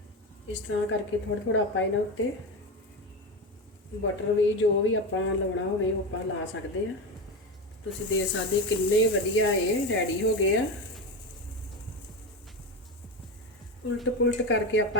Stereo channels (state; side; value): normal; both; correlation 0.19